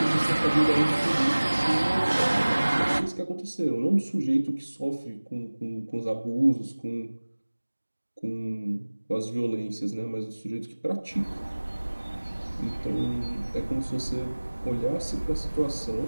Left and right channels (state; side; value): inverted; both; correlation -1.00